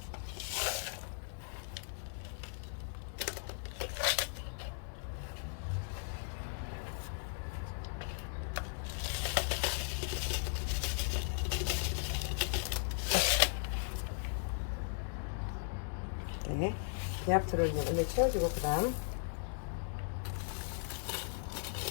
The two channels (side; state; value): right; silent; digital silence